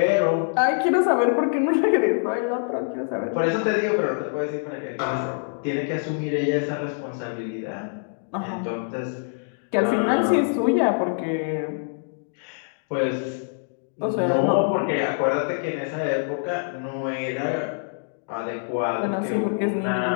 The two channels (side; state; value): right; silent; digital silence